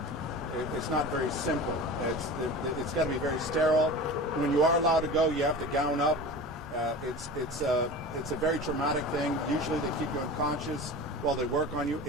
it's not very simple. It's got to be very sterile. When you are allowed to go, you have to gown up. It's a very traumatic thing. Usually they keep you unconscious while they work on you.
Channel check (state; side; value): normal; both; correlation 0.34